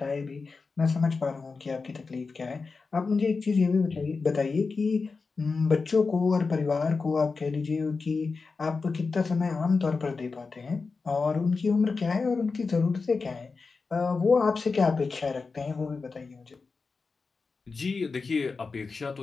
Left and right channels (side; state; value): right; quieter; 4.4 dB